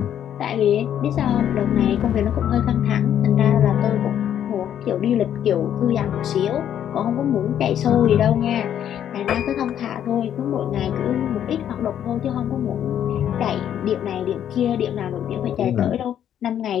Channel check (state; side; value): quieter; right; 10.0 dB